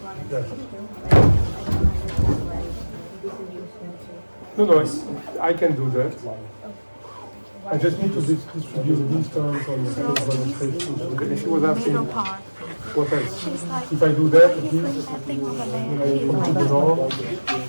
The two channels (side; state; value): both; inverted; correlation -1.00